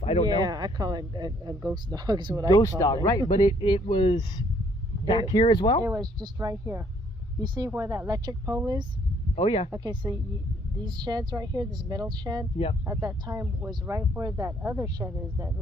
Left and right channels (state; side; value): normal; both; correlation 0.65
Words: I don't know. Yeah, I call it a ghost dog is what I call it. Ghost call dog, it. right. But it was back here as well? It was just right here. You see where that electric pole is? Oh, yeah. Okay, so these sheds right here, this metal shed, Yep. at that time was right where that other shed is, that